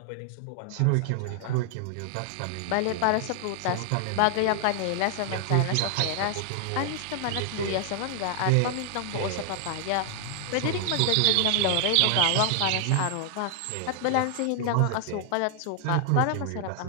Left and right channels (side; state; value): both; different; correlation 0.00